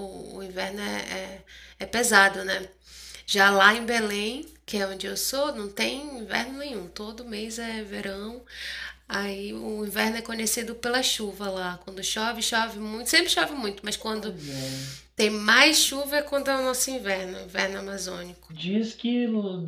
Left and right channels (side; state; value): both; identical; correlation 1.00